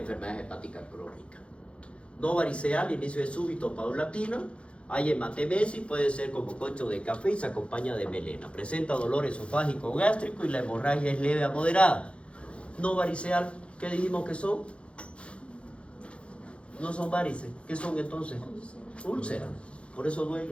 hepáticas crónicas. No variceal, inicio de súbito paulatino. Hay hematemesis, puede ser como concho de café y se acompaña de melena. Presenta dolor esofágico o gástrico y la hemorragia es leve a moderada. No variceal, ¿qué dijimos que son? No son varices. ¿Qué son entonces? Úlceras. Por eso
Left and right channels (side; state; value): right; late; 0.060 ms